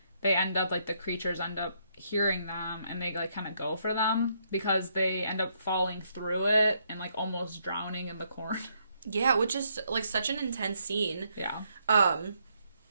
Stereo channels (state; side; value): inverted; both; correlation -0.73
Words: they end up, like, the creatures end up hearing them and they like kind of go for them because they end up falling through it and like almost drowning in the corn. Yeah, which is like such an intense scene. Yeah.